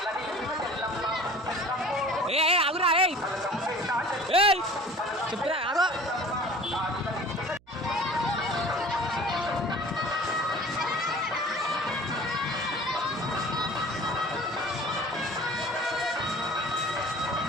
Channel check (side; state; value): right; noise; hum, 30 dB below the sound